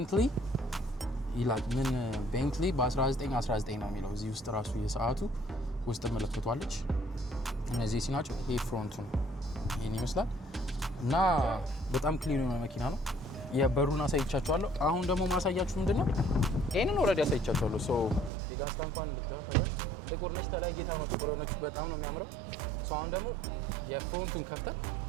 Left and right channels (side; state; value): left; drops out; at 18.3 s